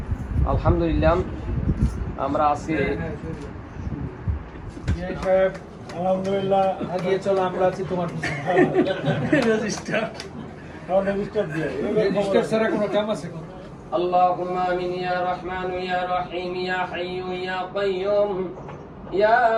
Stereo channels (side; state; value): both; identical; correlation 1.00